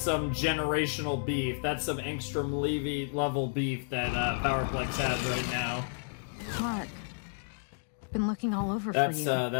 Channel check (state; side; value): silent; right; digital silence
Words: some generational beef. That's some Engstrom Levy level beef that Powerplex has right now. Mark, I've been looking all over for you.